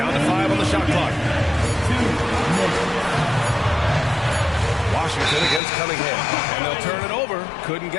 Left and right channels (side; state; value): right; drops out; at 5.6 s